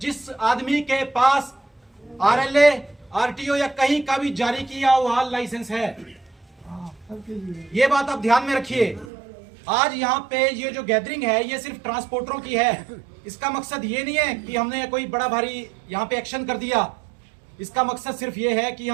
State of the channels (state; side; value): drops out; left; at 9.1 s